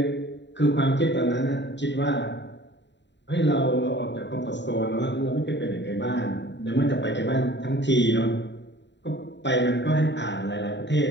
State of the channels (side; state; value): right; late; 0.52 ms